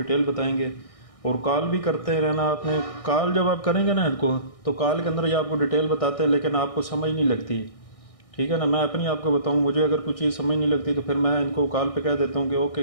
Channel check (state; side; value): late; right; 1.6 ms